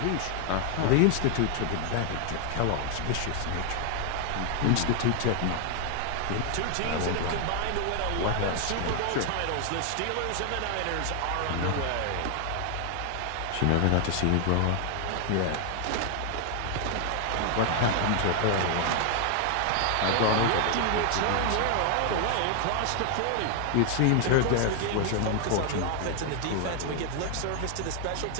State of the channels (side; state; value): both; different; correlation 0.00